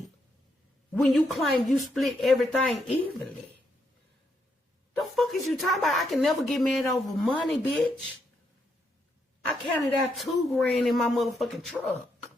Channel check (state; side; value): normal; both; correlation 0.78